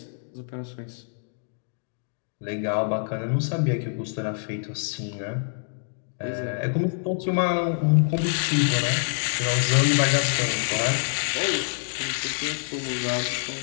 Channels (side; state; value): right; silent; digital silence